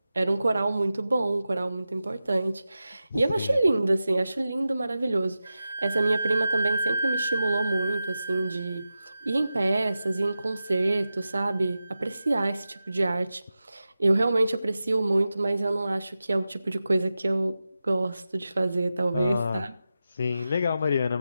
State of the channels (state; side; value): inverted; both; correlation -0.92